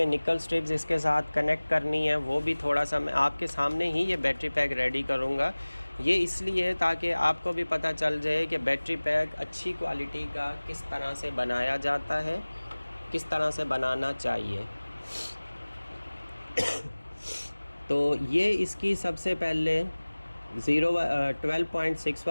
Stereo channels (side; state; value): both; inverted; correlation -1.00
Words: निकल स्ट्रिप्स इसके साथ कनेक्ट करनी है वो भी थोड़ा सा मैं आपके सामने ही ये बैटरी पैक रेडी करूँगा। ये इसलिए ताकि आपको भी पता चल जाए कि बैटरी पैक अच्छी क्वालिटी का किस तरह से बनाया जाता है, किस तरह से बनाना चाहिए। तो ये इसकी सबसे पहले 12.6